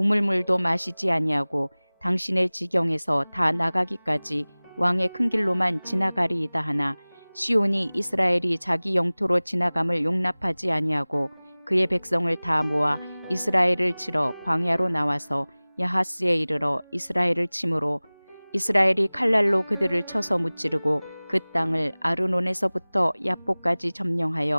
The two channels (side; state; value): both; inverted; correlation -1.00